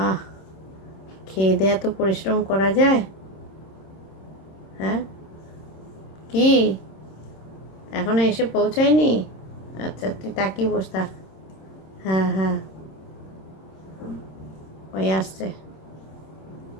খেয়ে দেয়া তো পরিশ্রম করা যায়। হ্যাঁ কি, এখনো এসে পৌঁছায়নি? আচ্ছা তুই তাকিয়ে বস থাক। হ্যাঁ হ্যাঁ, ওই আসছে।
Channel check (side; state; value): right; late; 26 ms